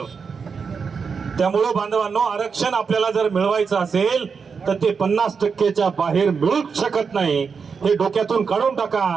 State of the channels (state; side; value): quieter; left; 5.7 dB